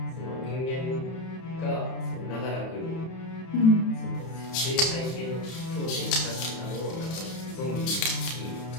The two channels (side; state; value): right; late; 31 ms